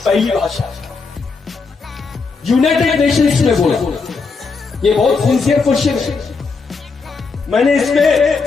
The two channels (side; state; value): right; quieter; 4.6 dB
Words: भाषा है। यूनाइटेड नेशंस में बोला, ये बहुत सिंसियर क्वेश्चन है। मैंने इस